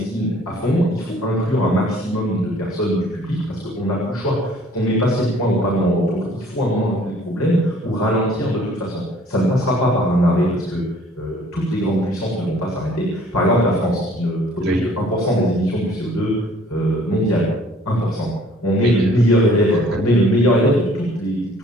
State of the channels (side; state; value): both; normal; correlation 0.56